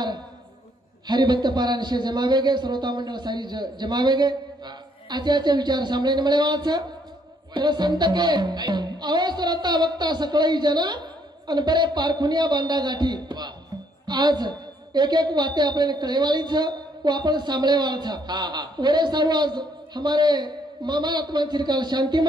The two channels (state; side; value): normal; both; correlation 0.69